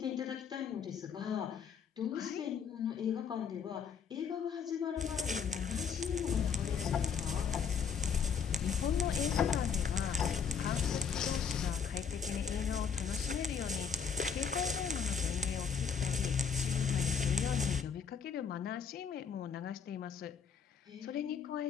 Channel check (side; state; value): right; quieter; 6.6 dB